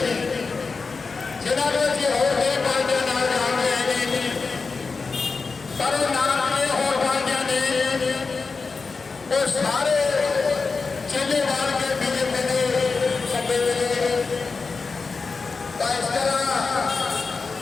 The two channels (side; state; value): right; quieter; 4.5 dB